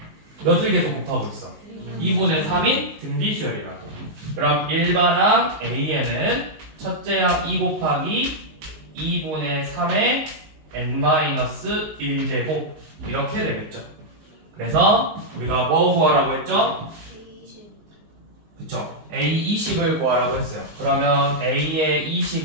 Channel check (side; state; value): left; late; 19 ms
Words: 몇을 계속 곱하고 있어? 2분의 3인 등비 수열이라고. 그럼 일반항 AN은 첫째 항 2 곱하기 2분의 3의 n-1제곱 이렇게 되겠죠. 그래서 우리가 뭐 구하라고 했죠? 그쵸? A20을 구하라고 했어요. 그러면 A의